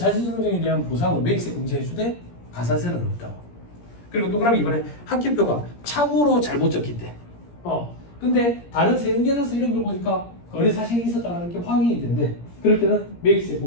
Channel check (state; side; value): late; right; 17 ms